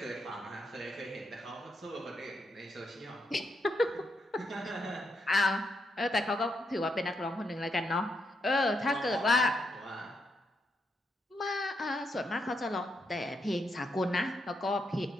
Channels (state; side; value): normal; both; correlation 0.80